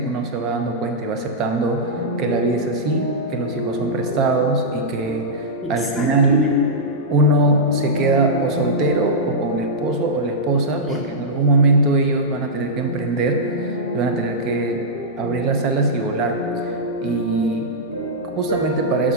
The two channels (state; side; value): normal; both; correlation -0.11